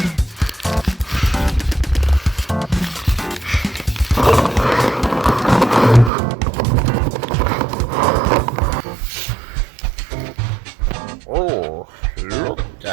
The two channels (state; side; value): drops out; left; at 6.1 s